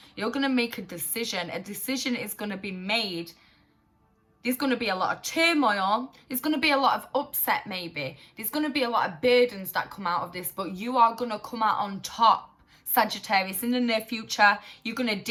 You're going to make a decision. A decision is going to be made. There's going to be a lot of turmoil. There's going to be a lot of upset maybe. There's going to be a lot of burdens that come out of this, but you are going to come out on top, Sagittarius. In the near future, you're going to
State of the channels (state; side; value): identical; both; correlation 1.00